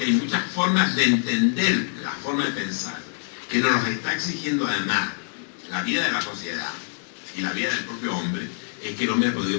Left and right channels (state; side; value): silent; right; 62 dB below the other